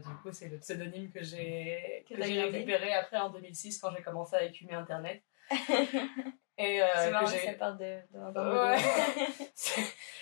du coup, c'est le pseudonyme que j'ai récupéré après en 2006 quand j'ai commencé à écumer Internet. Et c'est marrant que ça part d'un ouais.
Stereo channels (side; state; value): right; silent; digital silence